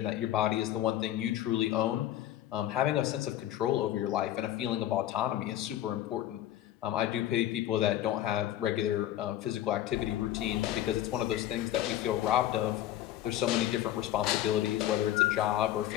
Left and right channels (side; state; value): right; quieter; 12.9 dB